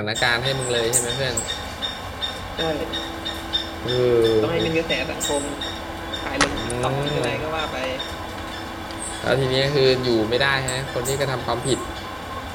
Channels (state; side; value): identical; both; correlation 1.00